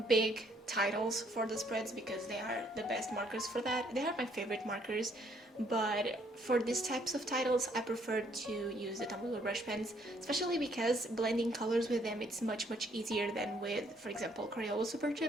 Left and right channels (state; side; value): normal; both; correlation 0.67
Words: big titles for the spreads, because they are the best markers for that. They are my favorite markers, but for these types of titles I prefer to use the Tombow brush pens, especially because blending colors with them it's much easier than with, for example, Crayola Super